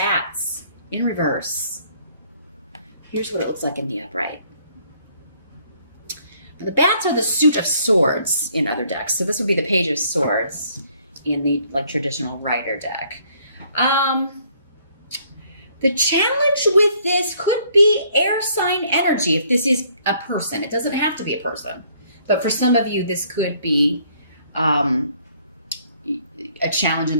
in reverse. Here's what it looks like in the upright. The bats are the suit of swords in other decks. So this would be the Page of Swords in the traditional Rider deck. The challenge with this could be air sign energy if this is a person. It doesn't have to be a person. But for some of you, this could be a challenge in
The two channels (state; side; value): inverted; both; correlation -0.63